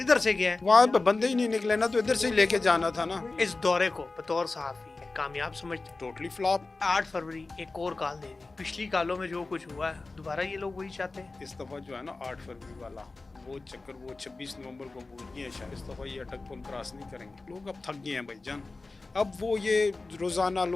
से गया है। वहाँ पे बंदे ही नहीं निकले ना, तो इधर से ही लेके जाना था ना। इस दौरे को बतौर सहाफी कामयाब समझते। Totally flop. 8 फरवरी एक और कॉल दे दी। पिछली कालों में जो कुछ हुआ है दोबारा ये लोग वही चाहते हैं। इस दफा जो है ना 8 फरवरी वाला वो चक्कर, वो 26 नवंबर को भूल गए हैं शायद। इस दफा ये अटक पुल क्रॉस नहीं करेंगे। लोग अब थक गए हैं भाईजान। अब वो ये रोजाना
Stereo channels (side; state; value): right; quieter; 3.5 dB